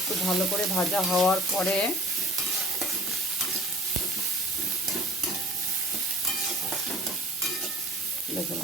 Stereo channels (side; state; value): both; normal; correlation 0.45